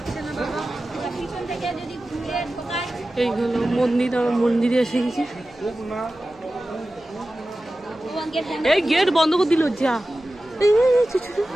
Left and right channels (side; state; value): right; noise; hum, 29 dB below the sound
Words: এই হলো মন্দির, আমার মন্দিরে এসে গেছি। এই গেট বন্ধ করে দিল যা।